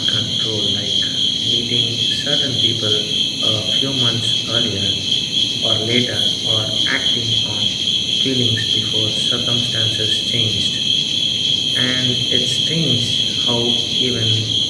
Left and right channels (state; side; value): identical; both; correlation 1.00